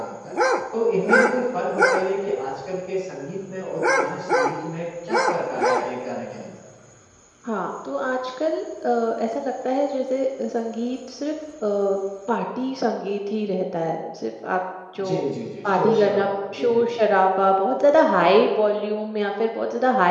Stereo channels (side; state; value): both; identical; correlation 1.00